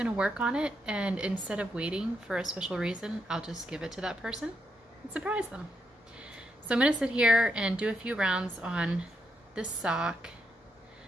work on it, and instead of waiting for a special reason, I'll just give it to that person and surprise them. So I'm gonna sit here and do a few rounds on this sock.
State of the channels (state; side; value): normal; both; correlation 0.80